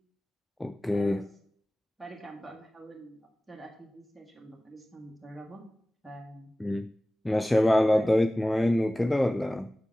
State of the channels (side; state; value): both; normal; correlation 0.97